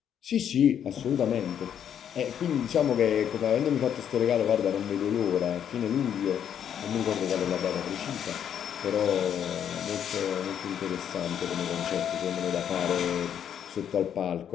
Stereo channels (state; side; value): quieter; right; 9.1 dB